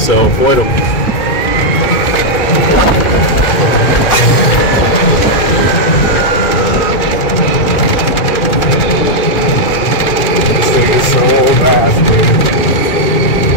avoid them. This thing is so fast, dude.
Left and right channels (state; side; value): late; right; 2.3 ms